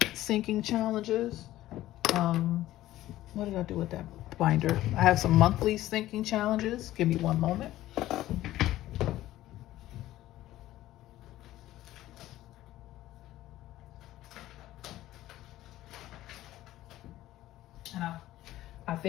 sinking challenges. What did I do with that binder? I have some monthly sinking challenges. Give me one moment. And I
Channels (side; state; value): right; quieter; 14.9 dB